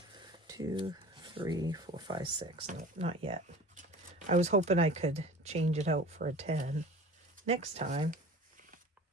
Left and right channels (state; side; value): normal; both; correlation 0.41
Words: 2, 3, 4, 5, 6. No, not yet. I was hoping I could change it out for a 10 next time.